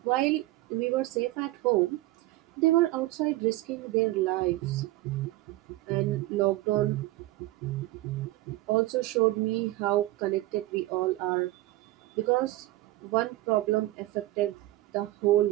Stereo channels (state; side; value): quieter; left; 17.9 dB